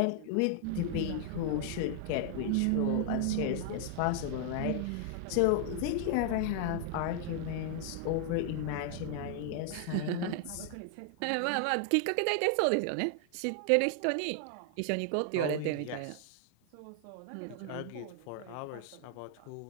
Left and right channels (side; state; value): both; different; correlation 0.00